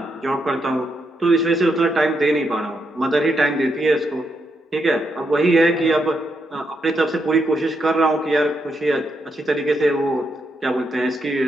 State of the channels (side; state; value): both; normal; correlation 0.81